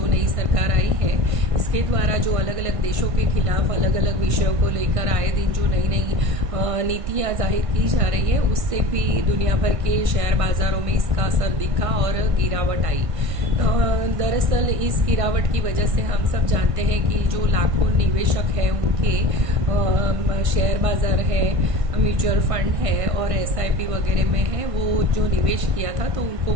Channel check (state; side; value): late; left; 1.6 ms